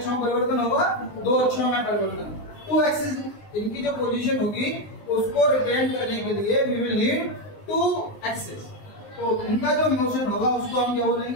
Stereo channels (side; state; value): right; late; 19 ms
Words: में परिवर्तन होगा? 2 अक्षों में परिवर्तन। 2 एक्सिस इनकी जो पोजीशन होगी उसको रिप्रेजेंट करने के लिए वी विल नीड 2 एक्सिस। तो इनका जो मोशन होगा उसको हम क्या